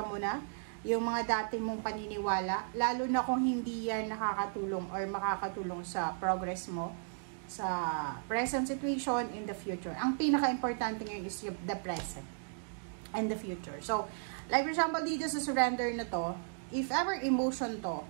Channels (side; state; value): left; silent; digital silence